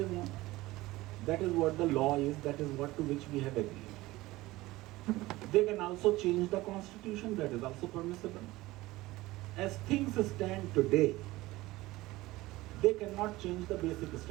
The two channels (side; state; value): left; quieter; 18.8 dB